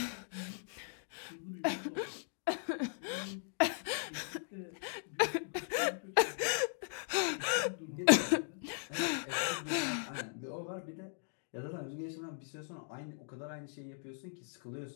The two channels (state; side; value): silent; right; digital silence